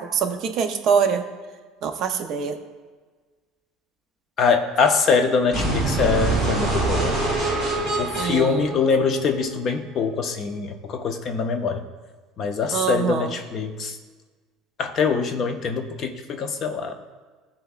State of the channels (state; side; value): normal; both; correlation 0.45